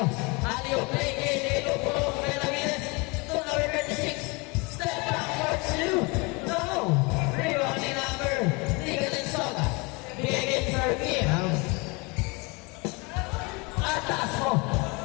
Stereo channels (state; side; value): quieter; right; 28.0 dB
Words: Aliyo play kay Nilo Puro Benavides. To number 36. Step backwards to. No. Rebound ni number 3, Galansoga. Bigay kay Servia. Atas mo.